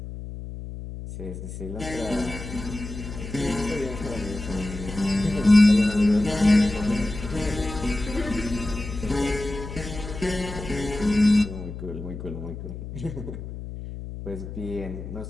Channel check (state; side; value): noise; left; hum, 9 dB below the sound